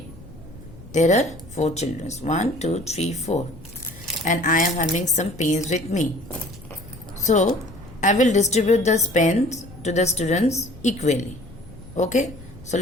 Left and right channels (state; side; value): noise; left; rumble, 19 dB below the sound